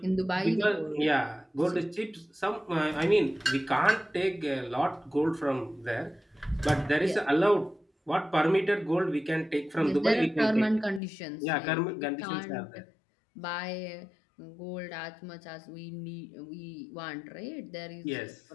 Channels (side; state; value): right; drops out; at 11.0 s